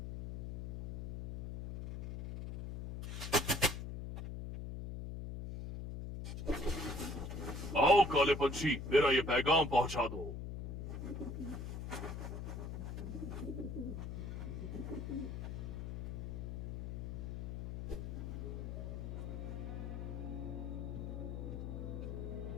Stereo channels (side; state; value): left; noise; hum, 5 dB below the sound